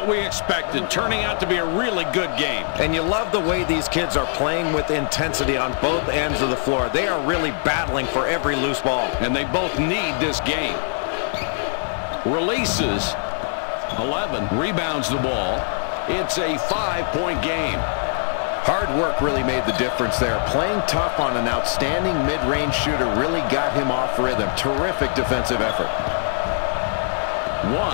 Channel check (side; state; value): right; silent; 56 dB below the other